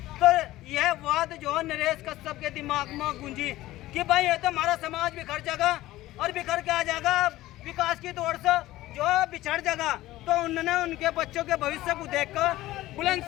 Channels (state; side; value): quieter; right; 16.4 dB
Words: तो यह बात जो नरेश कश्यप के दिमाग में गूंजी कि भाई ये तो हमारा समाज बिखर जाएगा, और बिखर के आ जाएगा विकास की दौड़ से जो बिछड़ जाएगा। तो उन्होंने उनके बच्चों के भविष्य को देखकर